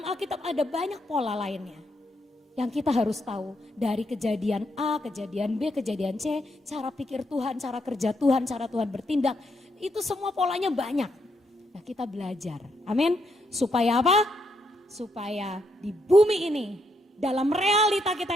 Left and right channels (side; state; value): both; normal; correlation 0.78